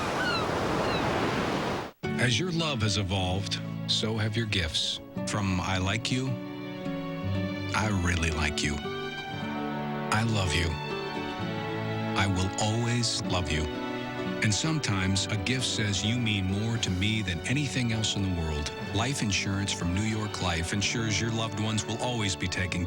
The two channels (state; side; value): identical; both; correlation 1.00